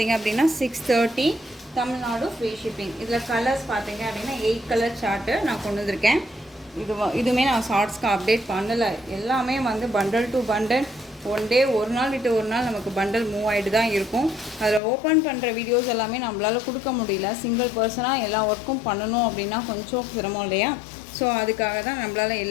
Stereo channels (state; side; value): drops out; right; at 14.8 s